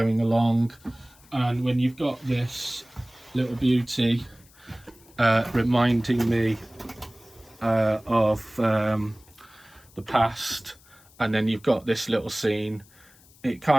along. And when you've got this little beauty reminding me of the past, and then you've got this little scene, it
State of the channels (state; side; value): noise; left; hiss, 27 dB below the sound